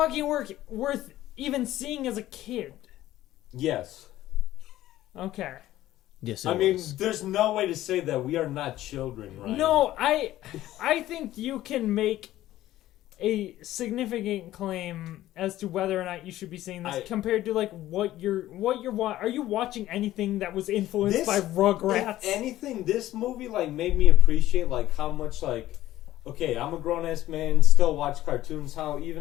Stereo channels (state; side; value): quieter; right; 14.5 dB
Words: worth even seeing as a kid? Yes. Okay. Yes, I mean, there's no way to say that we are not children, right? No, I think you can make a significant claim as to whether or not you should be seeing this compared to like what you're are you watching anything that was influenced by Rugrats? If anything, this movie like made me appreciate like how much like okay, I'm a grown ass man, still watch cartoons. How